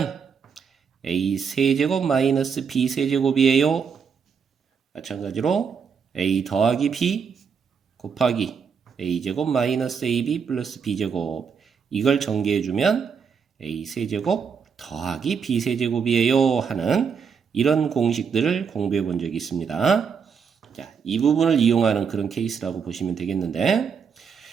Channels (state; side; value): quieter; left; 6.4 dB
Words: a 세제곱 마이너스 b 세제곱이에요. 마찬가지로 a 더하기 b 곱하기 a제곱 마이너스 ab 플러스 b제곱. 이걸 전개해주면 a 세제곱 더하기 b 세제곱이에요. 하는 이런 공식들을 공부해 본 적이 있습니다. 자, 이 부분을 이용하는 그런 케이스라고 보시면 되겠는데,